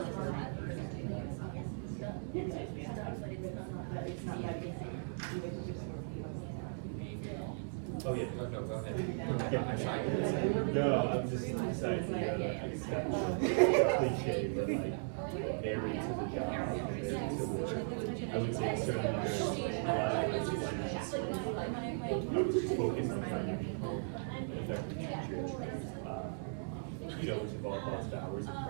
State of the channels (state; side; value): silent; left; digital silence